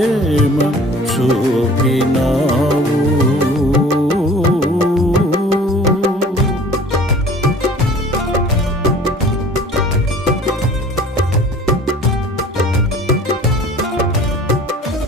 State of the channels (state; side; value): normal; both; correlation 0.47